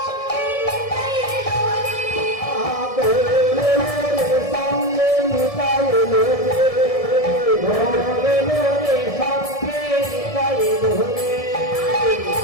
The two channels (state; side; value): late; right; 1.7 ms